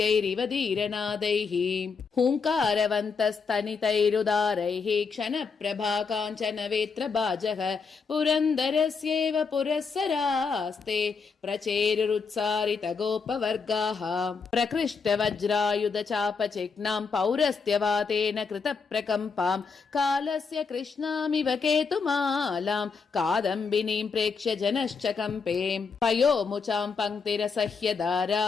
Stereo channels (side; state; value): right; quieter; 5.1 dB